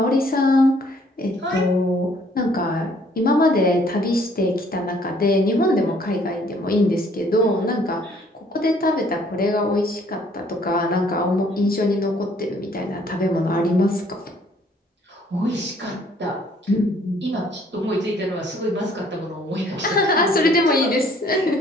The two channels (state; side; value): normal; both; correlation 0.61